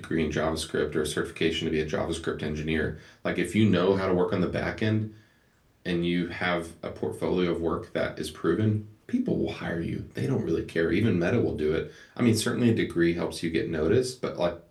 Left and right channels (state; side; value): identical; both; correlation 1.00